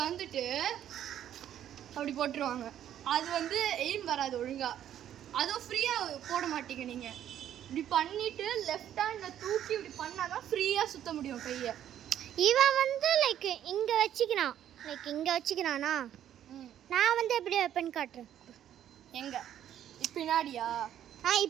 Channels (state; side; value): quieter; left; 10.8 dB